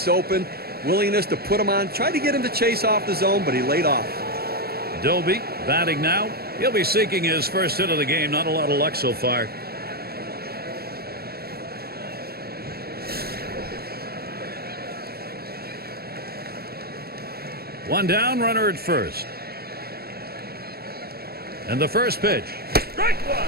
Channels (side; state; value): left; late; 0.45 ms